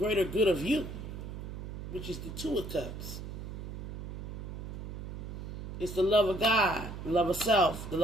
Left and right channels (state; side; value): noise; right; hum, 8 dB below the sound